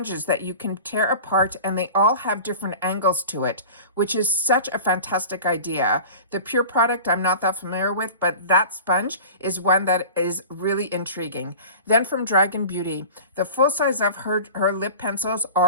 that you can tear apart, and they all have different angles to it, which is such a fantastic idea. The Pure product I'm not that familiar with, but that sponge is one that is really intriguing. Then from Dragon Beauty, the full size of her lip pencils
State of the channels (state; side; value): inverted; both; correlation -0.37